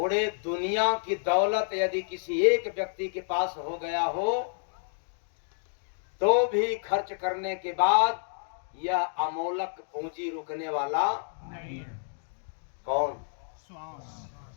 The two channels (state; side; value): silent; right; digital silence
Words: दुनिया की दौलत यदि किसी एक व्यक्ति के पास हो गया हो तो भी खर्च करने के बाद यह अमोलक पूंजी रुकने वाला नहीं है। कौन श्वास